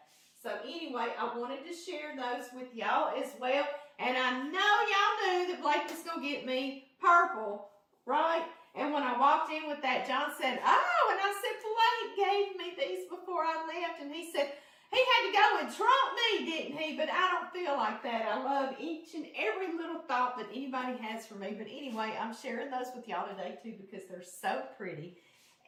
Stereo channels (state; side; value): identical; both; correlation 1.00